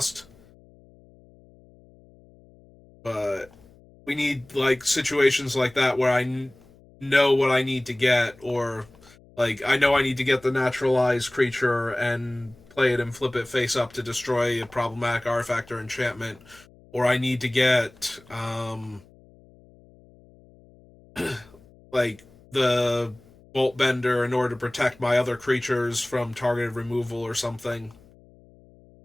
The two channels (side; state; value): left; noise; hum, 26 dB below the sound